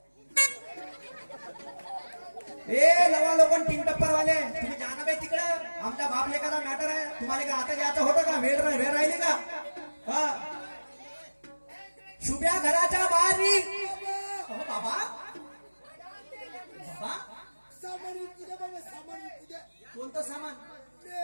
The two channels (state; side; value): inverted; both; correlation -1.00